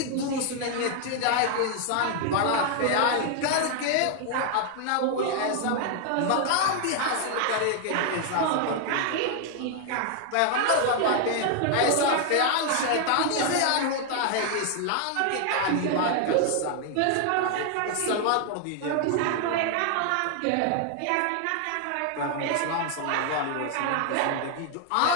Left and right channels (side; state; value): both; different; correlation 0.00